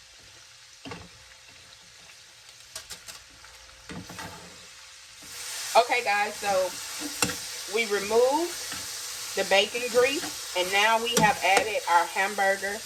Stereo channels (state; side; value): identical; both; correlation 1.00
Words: Okay, guys, so we removed the bacon grease, and now we have added our hamburger.